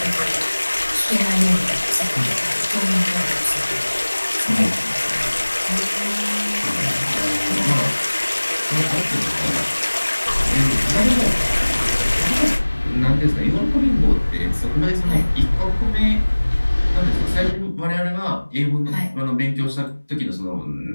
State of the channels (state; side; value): inverted; both; correlation -1.00